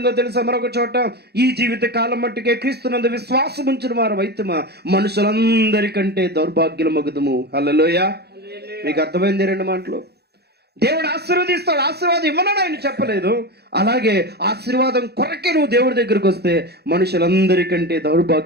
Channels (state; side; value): late; left; 0.47 ms